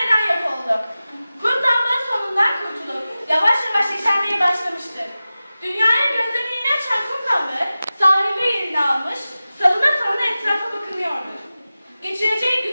yok oldu? Kum damla sonundan kurtulup yavaş yavaş yeşermeye başlamıştır. Dünyaya gözlerini açan kum damla sahilde yerini almış, salına salına etrafa bakınıyordu. Geçireceği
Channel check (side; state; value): both; inverted; correlation -0.95